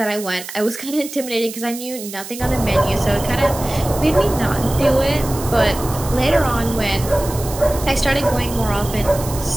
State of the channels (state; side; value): noise; right; hiss, 12 dB below the sound